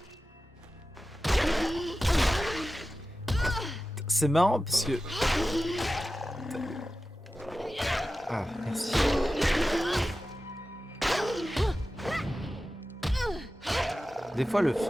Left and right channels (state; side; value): normal; both; correlation 0.94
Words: C'est marrant parce que... Ah, merci. Des fois les